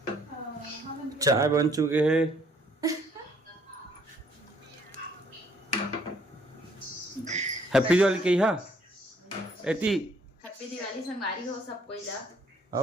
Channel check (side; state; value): both; normal; correlation 0.64